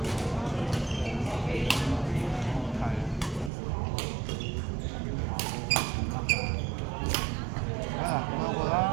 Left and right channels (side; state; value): left; drops out; at 3.5 s